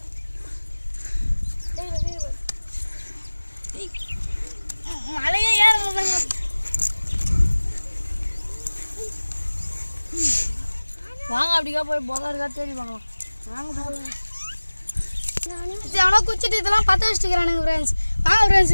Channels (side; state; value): both; inverted; correlation -1.00